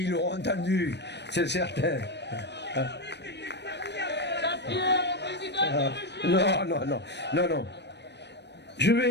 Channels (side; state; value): right; late; 0.50 ms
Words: ils l'auront entendu, c'est certain. Non. Je